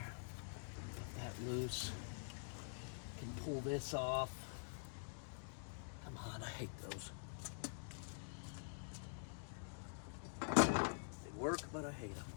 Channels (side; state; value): right; silent; digital silence